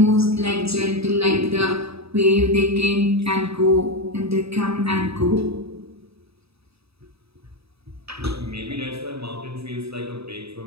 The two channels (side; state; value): left; late; 0.78 ms